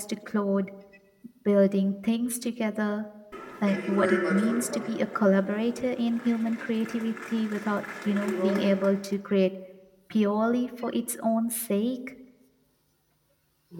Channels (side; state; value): both; identical; correlation 1.00